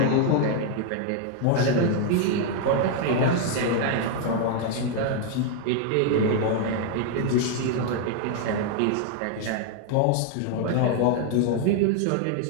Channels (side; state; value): both; different; correlation 0.00